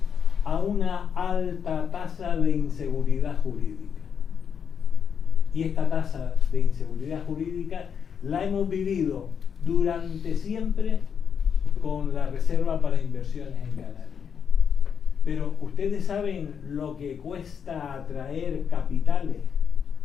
a una alta tasa de inseguridad jurídica. Y esta tasa de inseguridad jurídica la hemos vivido durante siempre con la Reserva para Inversiones en Canarias. Pero ustedes saben lo que cuesta atraer capitales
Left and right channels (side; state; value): right; quieter; 7.2 dB